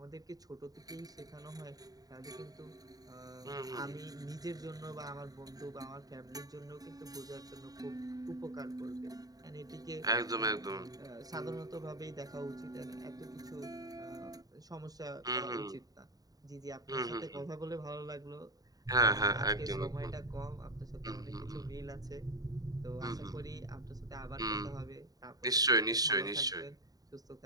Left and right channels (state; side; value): late; left; 0.18 ms